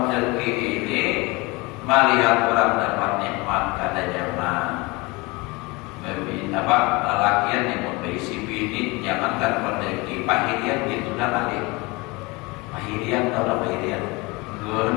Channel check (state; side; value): quieter; right; 25.0 dB